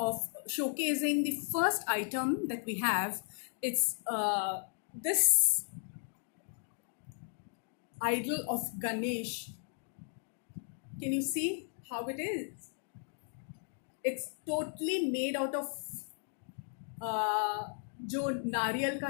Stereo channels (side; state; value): right; silent; 54 dB below the other